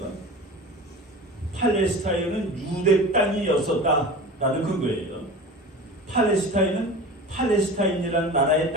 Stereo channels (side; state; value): both; normal; correlation 0.34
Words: 팔레스타인은 유대 땅이었었다라는 근거예요. 팔레스타인은 팔레스타인이라는 나라의